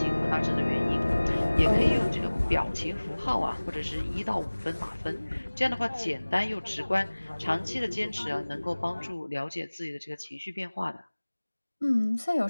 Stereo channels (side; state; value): both; inverted; correlation -1.00